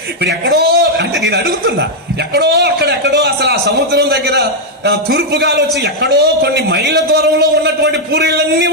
ఇప్పుడు ఎక్కడో అంటే నేను అడుగుతున్నా, ఎక్కడో అసలు ఆ సముద్రం దగ్గర తూర్పు గాలి వచ్చి ఎక్కడో కొన్ని మైళ్ళ దూరంలో ఉన్నటువంటి పూరీలన్నీ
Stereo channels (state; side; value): normal; both; correlation -0.02